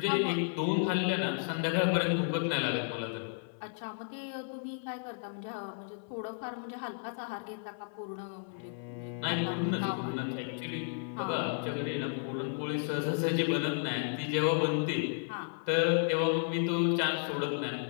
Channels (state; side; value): silent; right; 56 dB below the other